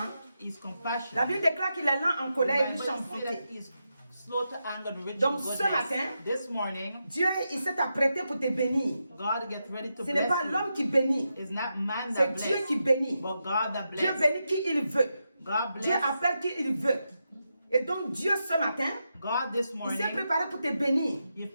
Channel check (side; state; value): both; inverted; correlation -0.86